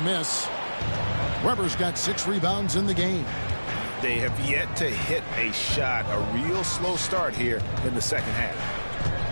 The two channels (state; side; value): inverted; both; correlation -1.00